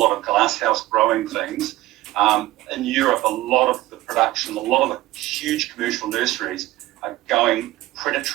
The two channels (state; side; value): quieter; left; 17.5 dB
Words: of glasshouse growing things, in Europe, a lot of the production, a lot of the huge commercial nurseries are going